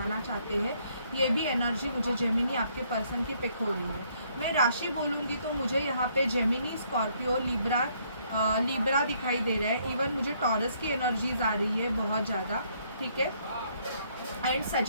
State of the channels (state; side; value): inverted; both; correlation -0.68